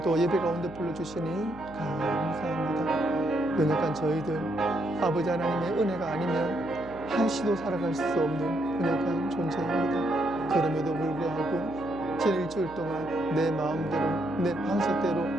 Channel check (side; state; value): right; noise; hum, 19 dB below the sound